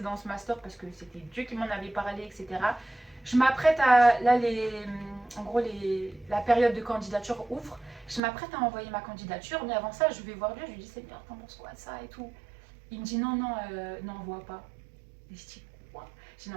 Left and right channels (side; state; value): left; drops out; at 8.2 s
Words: dans ce master parce que c'était Dieu qui m'en avait parlé, etc. Je m'apprête à. Là, en gros, la période de candidature ouvre. Je m'apprête à envoyer ma candidature, mais avant ça, je vais voir Dieu. Je lui dis, Seigneur, t'en penses quoi de ça et tout. Il me dit, non, non, n'envoie pas. Et je dis, quoi? Je dis,